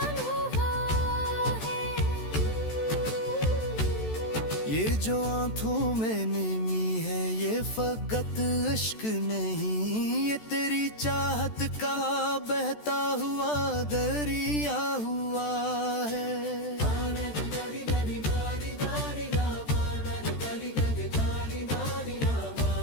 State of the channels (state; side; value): late; right; 14 ms